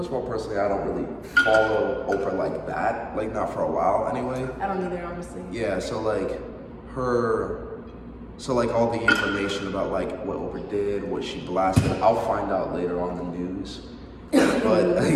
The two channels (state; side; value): identical; both; correlation 1.00